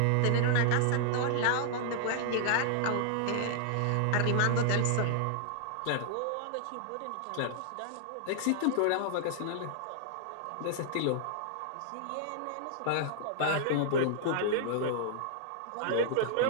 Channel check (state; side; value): different; both; correlation -0.01